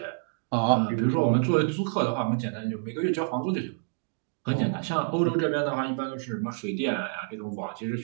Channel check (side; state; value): left; silent; 59 dB below the other